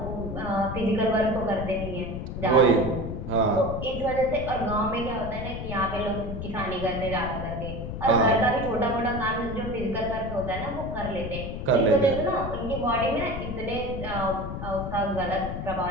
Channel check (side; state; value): left; noise; rumble, 6 dB below the sound